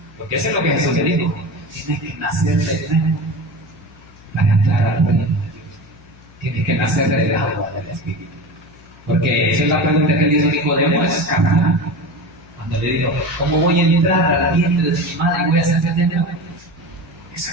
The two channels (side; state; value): left; noise; hum, 25 dB below the sound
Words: Porque eso es lo que Jesús le dijo. Tienes que nacer de nuevo para entrar al reino de Dios. Tienes que nacer del agua del Espíritu. Porque esa es la pregunta que le hizo Nicodemo, es carnal. Cuando le dijo, ¿cómo voy a entrar al vientre de mi madre y voy a ser de nuevo? Esa